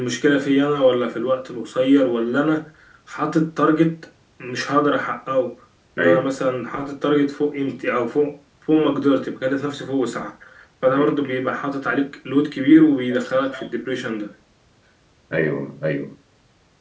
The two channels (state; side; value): identical; both; correlation 1.00